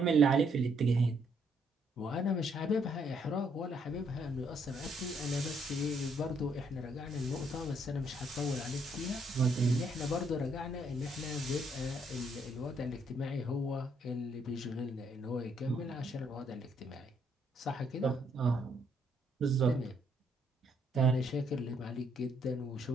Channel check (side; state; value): both; normal; correlation 0.71